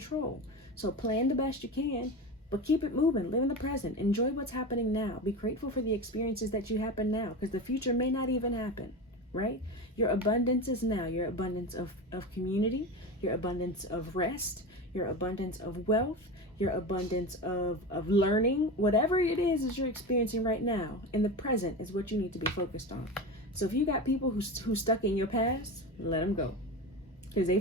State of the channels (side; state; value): both; normal; correlation 0.25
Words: So plan the best you can, but keep it moving. Live in the present. Enjoy what's happening now. Be grateful for the experiences that you happen now, because the future may not even happen, right? Your abundance is now. Your abundance of community, your abundance of rest, your abundance of wealth, your abundance of learning, whatever it is you're experiencing right now, in the present is what you need to be focused on. So if you got people who's stuck in your past, let them go, because they